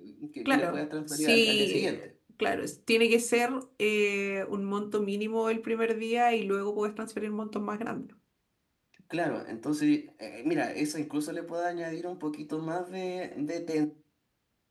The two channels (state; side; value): identical; both; correlation 1.00